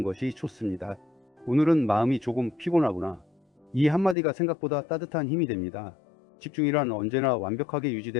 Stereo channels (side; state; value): right; drops out; at 4.2 s